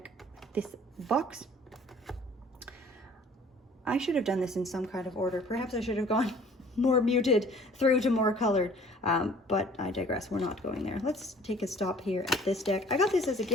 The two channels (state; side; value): normal; both; correlation 0.52